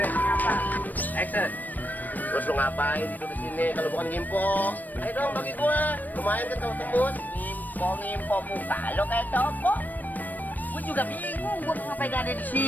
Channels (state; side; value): late; right; 0.086 ms